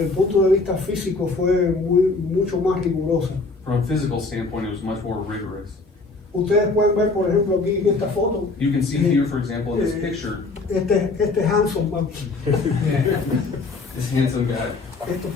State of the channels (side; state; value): right; quieter; 3.6 dB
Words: el punto de vista físico, fue mucho más rigurosa. From a physical standpoint, it was much more rigorous. Ustedes pueden ver, por ejemplo, aquí en esta foto, You can see here, for example, in this picture, este Hanson man. this handsome guy. Esto